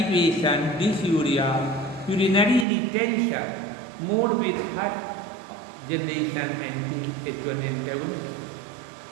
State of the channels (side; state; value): left; drops out; at 2.7 s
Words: dysuria, urinary retention, more with first generation anti-H1 antagonists.